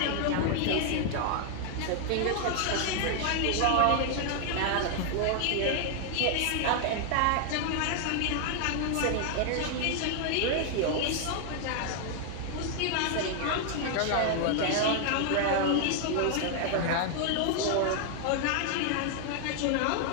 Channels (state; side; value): different; both; correlation 0.00